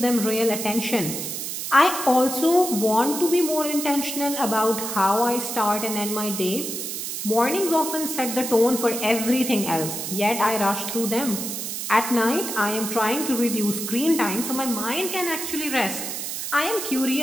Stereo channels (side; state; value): right; noise; hiss, 5 dB below the sound